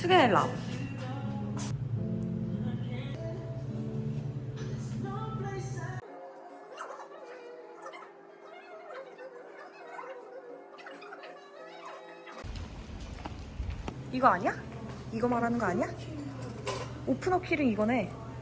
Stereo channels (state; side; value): identical; both; correlation 1.00